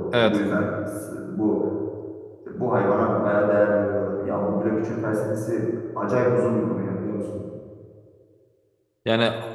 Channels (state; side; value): identical; both; correlation 1.00